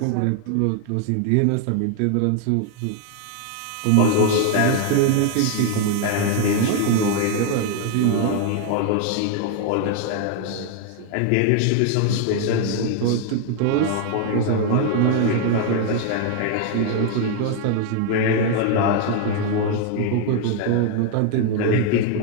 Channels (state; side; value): different; both; correlation 0.00